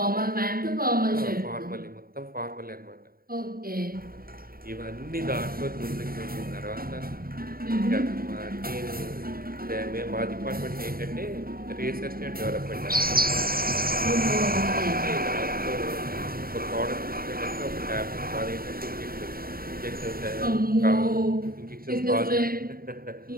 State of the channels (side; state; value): left; late; 0.43 ms